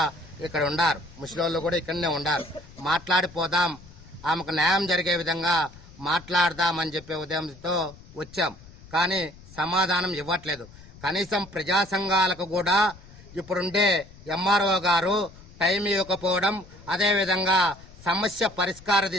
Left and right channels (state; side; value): noise; left; rumble, 20 dB below the sound